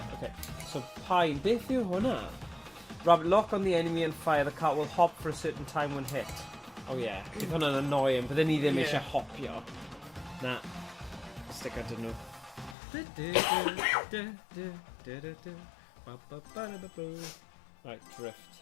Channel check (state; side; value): drops out; right; at 12.8 s